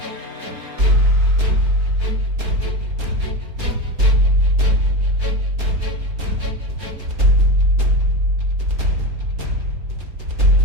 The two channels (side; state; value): left; late; 4.3 ms